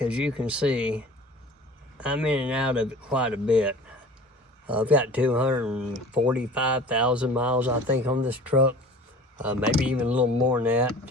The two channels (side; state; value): both; normal; correlation 0.43